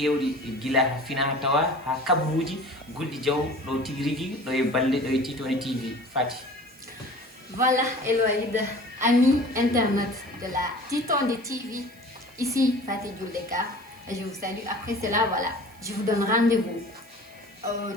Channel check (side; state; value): right; noise; hiss, 26 dB below the sound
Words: guila ha fina ha tawa ha kabruji gulɗi jaw ɗo tigui rigui ɗo e balɗe ɗo e Titondi TV Fati. Voilà Eloïde, amis internautes de la Titondi TV, ici Fatih Djouleka, je vous salue. Après cela, voilà, je vous donne rendez-vous au